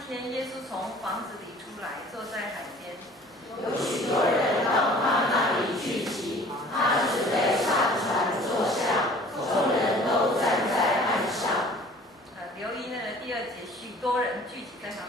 天，耶稣从房子里出来，坐在海边，有许多人到他那里聚集，他准备上船坐下，众人都站在岸上。留意那个第2节，许多人聚集在他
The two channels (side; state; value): both; normal; correlation 0.49